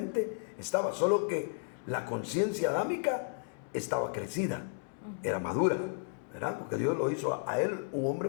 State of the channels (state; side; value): silent; right; digital silence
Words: estaba, solo que la conciencia adámica estaba crecida, era madura, ¿verdad? Porque Dios lo hizo a él un hombre